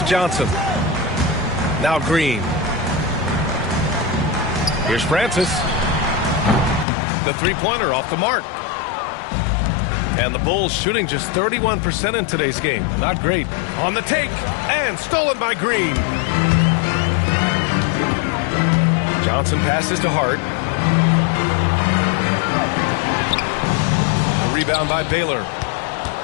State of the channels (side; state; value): right; drops out; at 6.9 s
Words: Johnson. Now Green. Here's Francis. The three-pointer off the mark. And the Bulls shooting just 31% in today's game. Not great. On the take. And stolen by Green. Johnson passes to Hart. The rebound by Baylor.